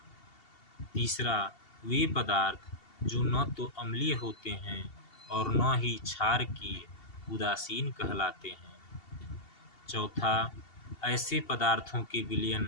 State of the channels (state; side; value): late; right; 2.7 ms